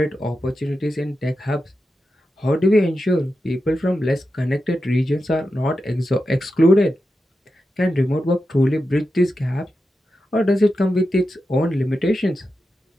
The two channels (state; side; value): normal; both; correlation 0.90